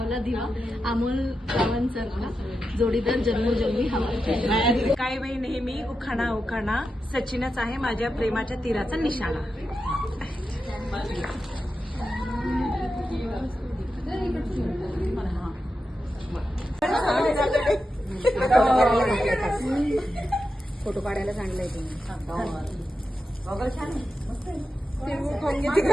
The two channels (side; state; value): both; normal; correlation 0.89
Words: दिवा, अमोल गावांचा जोडीदार जन्मोजन्मी हवा. काय बाई नेहमी उखाणा उखाणा, सचिनच आहे माझ्या प्रेमाच्या तीराचा निशाणा. फोटो काढायला सांगलाय तुम्ही.